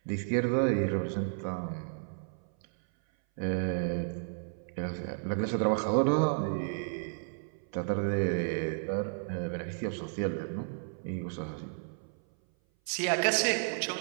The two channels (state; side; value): silent; left; 56 dB below the other